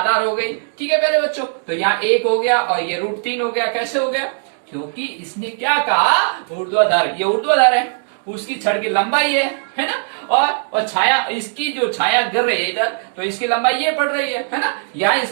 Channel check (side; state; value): left; silent; digital silence